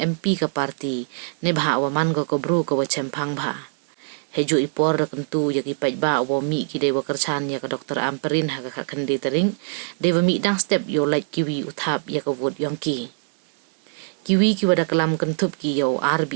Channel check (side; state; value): left; silent; digital silence